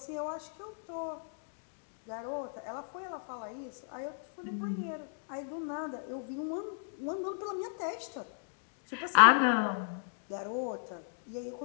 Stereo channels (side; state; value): right; silent; digital silence